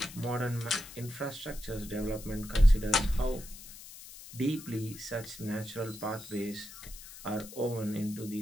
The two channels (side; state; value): left; noise; hiss, 15 dB below the sound